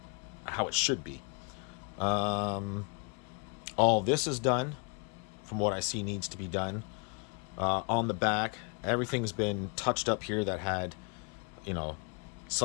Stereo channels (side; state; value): right; quieter; 34.1 dB